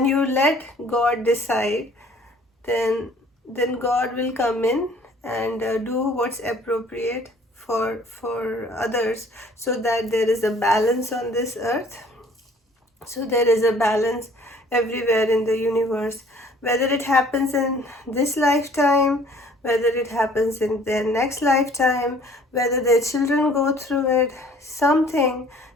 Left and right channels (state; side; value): normal; both; correlation 0.55